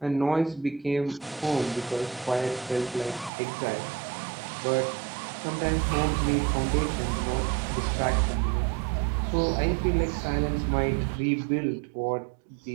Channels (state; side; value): drops out; left; at 3.3 s